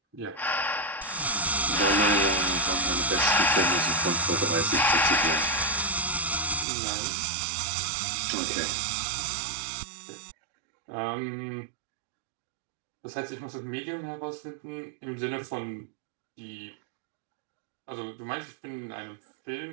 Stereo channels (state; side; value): drops out; left; at 6.7 s